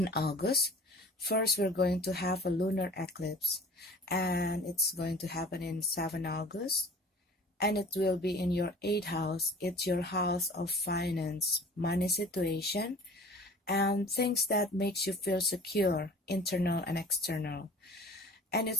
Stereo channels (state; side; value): normal; both; correlation 0.44